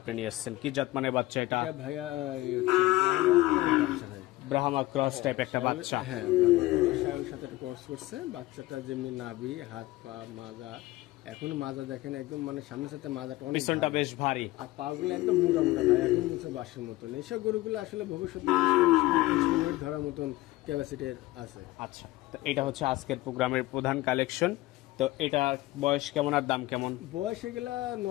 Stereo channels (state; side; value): quieter; right; 18.6 dB